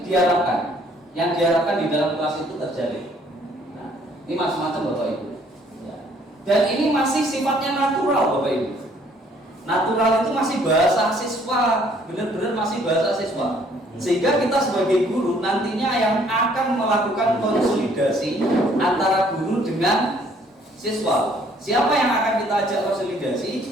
diharapkan, yang diharapkan di dalam kelas itu terjadi. Nah, ini macam-macam Bapak Ibu. Ya. Dan ini masih sifatnya natural Bapak Ibu. Natural itu masih bahasa siswa, benar-benar masih bahasa siswa. Sehingga kita sebagai guru nantinya yang akan melakukan konsolidasi antara guru dengan siswa. Siapa yang akan kita ajak konsolidasi?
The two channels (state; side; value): normal; both; correlation 0.62